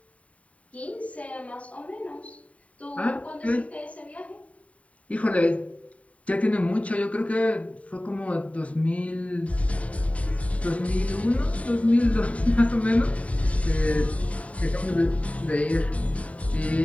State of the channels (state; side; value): late; right; 0.067 ms